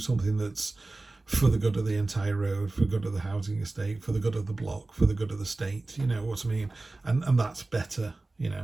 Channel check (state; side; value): quieter; left; 3.1 dB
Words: that's for the good of the entire road, for the good of the housing estate, for the good of the block, for the good of the state, you know what I mean? And that's better, you